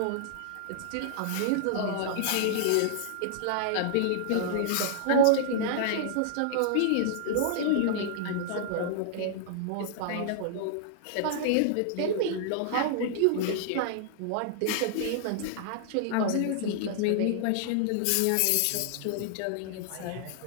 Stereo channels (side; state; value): both; different; correlation -0.01